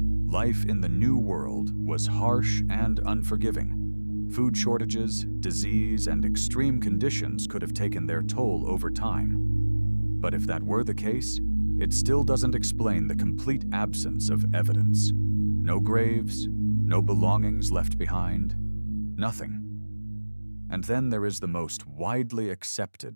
Life in the New World was harsh and unforgiving. Food shortages, disease, and extreme conditions could have taken their toll over time. But if that were the case, it still doesn't explain the complete absence of evidence. No graves, no belongings left behind, nothing. And then there is the most widely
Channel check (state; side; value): inverted; both; correlation -1.00